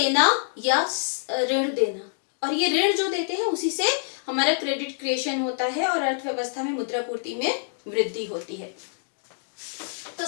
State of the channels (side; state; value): right; silent; digital silence